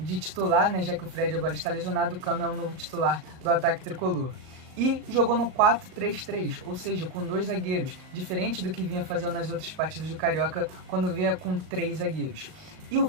titular, né? Já que o Fred agora está lesionado, o Cano é o novo titular do ataque tricolor. E jogou no 4-3-3, ou seja, com 2 zagueiros, diferente do que vinha fazendo nas outras partidas do Carioca, quando vinha com 3 zagueiros. E o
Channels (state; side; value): late; left; 38 ms